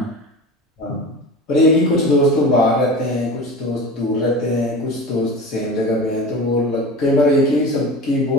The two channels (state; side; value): normal; both; correlation 0.32